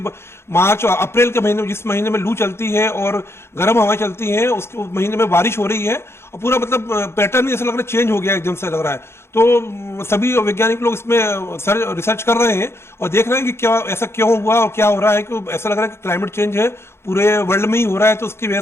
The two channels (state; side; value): late; right; 0.12 ms